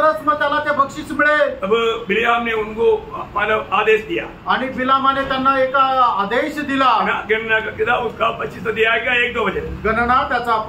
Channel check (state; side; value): identical; both; correlation 1.00